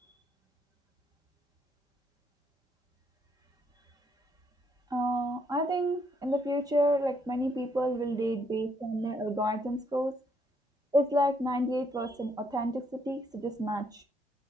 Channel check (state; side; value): normal; both; correlation 0.72